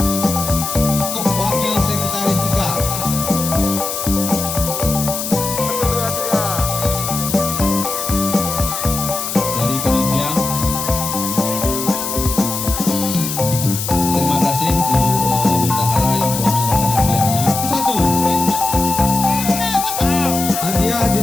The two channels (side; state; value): left; noise; hiss, 4 dB below the sound